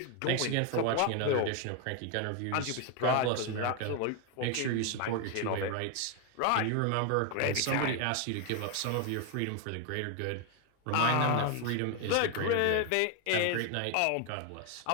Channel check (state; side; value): different; both; correlation 0.01